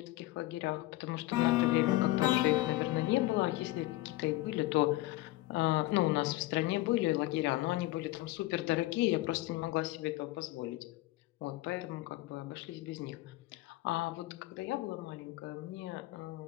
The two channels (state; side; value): quieter; right; 17.7 dB